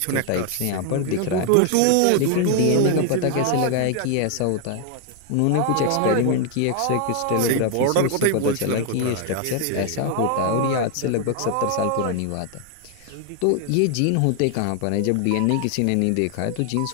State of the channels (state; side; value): different; both; correlation 0.00